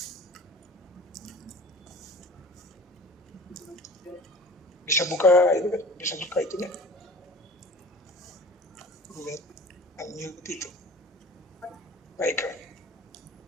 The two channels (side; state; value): both; normal; correlation 0.42